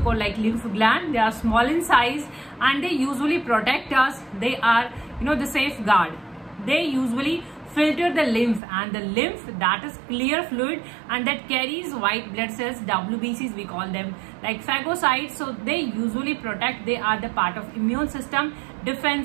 like lymph gland. They are small in size and they usually protect us. They are the safeguard. They usually filter the lymph, and the lymph, that is clear fluid and that carries white blood cells, WBCs we call them, like phagocytes. So they usually protect. They are the part of immune system,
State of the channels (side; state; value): left; drops out; at 8.6 s